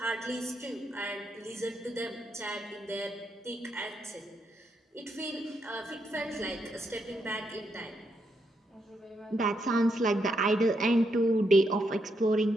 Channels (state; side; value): normal; both; correlation 0.79